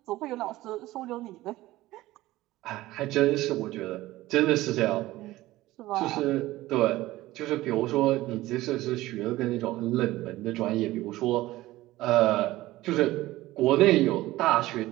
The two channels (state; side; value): quieter; left; 17.3 dB